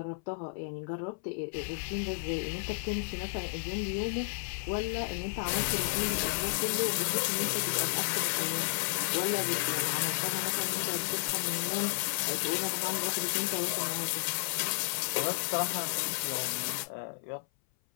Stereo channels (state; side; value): silent; right; 56 dB below the other